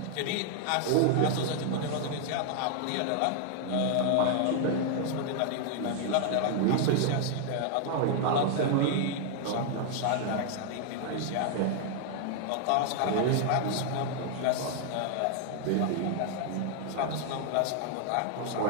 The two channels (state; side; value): different; both; correlation 0.00